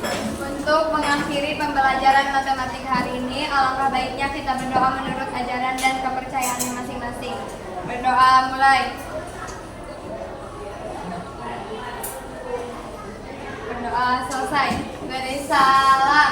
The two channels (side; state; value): both; identical; correlation 1.00